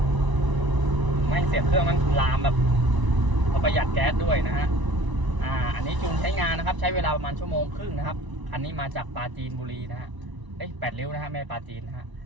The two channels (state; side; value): late; left; 1.0 ms